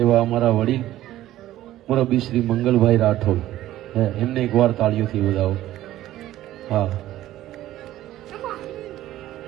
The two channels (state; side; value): quieter; left; 14.2 dB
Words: એવા અમારા વડીલ મુરબ્બી શ્રી મંગલભાઈ રાઠોડ, એમને એકવાર તાળીઓથી વધાવો. હા,